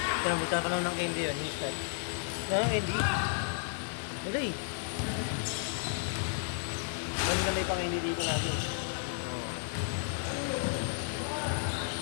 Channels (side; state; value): right; silent; 56 dB below the other